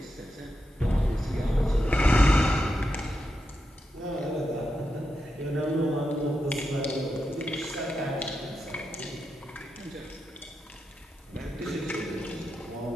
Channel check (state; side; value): normal; both; correlation 0.87